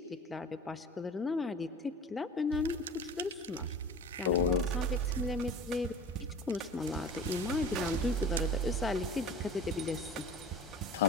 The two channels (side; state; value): both; normal; correlation 0.39